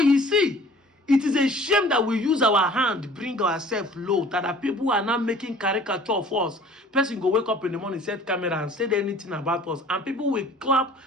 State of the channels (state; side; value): normal; both; correlation 0.50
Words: you see, it is a shame that we use our hand, bring ourselves low, that the people are not making caricature of us. Person go wake up in the morning, set camera and say anything about us. And people will clap